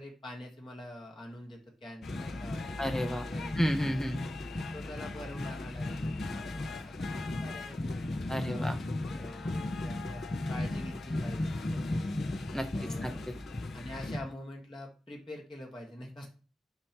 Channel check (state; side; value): normal; both; correlation 0.93